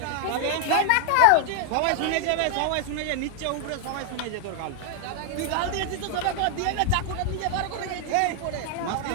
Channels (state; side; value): different; both; correlation 0.00